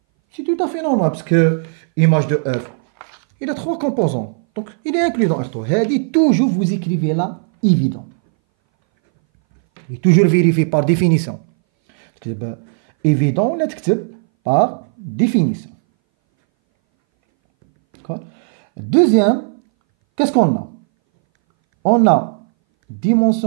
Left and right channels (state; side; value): silent; left; 62 dB below the other